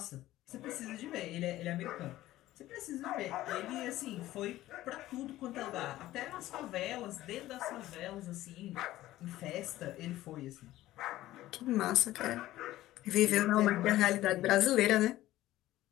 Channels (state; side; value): quieter; right; 15.4 dB